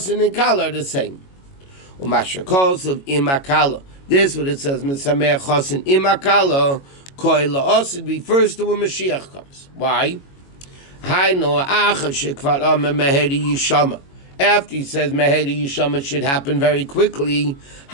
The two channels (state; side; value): late; right; 22 ms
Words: and Kala are the same. Umasha calls of Imakala. This what it says, Misameach Chosin Imakala, Koi La'osid refers to when Mashiach comes. Why? Haino Acha Shekvar Ame Meheri Yishama. After he says Meheri Yishama should happen very quickly,